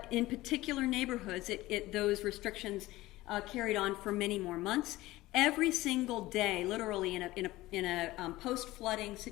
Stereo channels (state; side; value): quieter; right; 17.9 dB